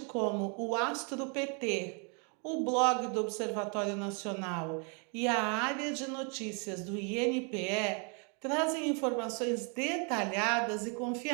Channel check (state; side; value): quieter; left; 36.4 dB